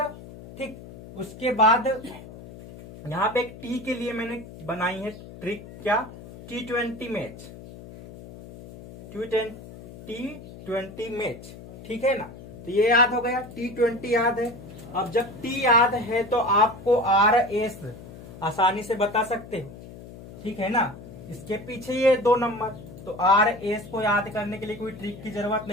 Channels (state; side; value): noise; left; hum, 16 dB below the sound